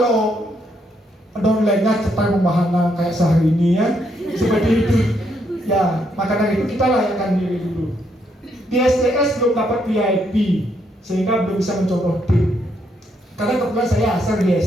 downline-nya cepat membahana kayak sehari ini ya. Seperti itu. Ya, maka dari itu kita layakkan diri dulu. Di STS belum dapat VIP, sehingga belum bisa mencontoh tim. Karena kebetulan saya asal di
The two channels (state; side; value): normal; both; correlation 0.75